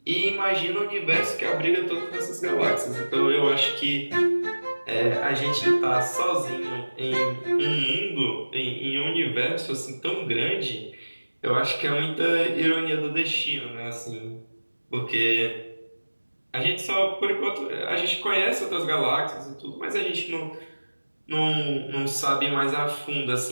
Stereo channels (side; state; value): both; inverted; correlation -1.00